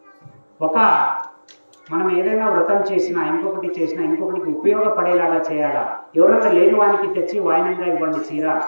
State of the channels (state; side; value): inverted; both; correlation -1.00